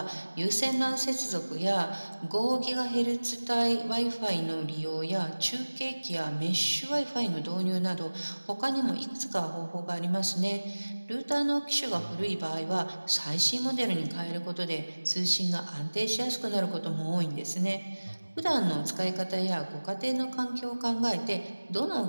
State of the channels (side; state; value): both; inverted; correlation -1.00